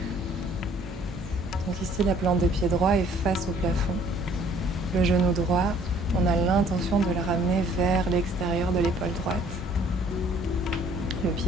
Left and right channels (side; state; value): both; normal; correlation 0.58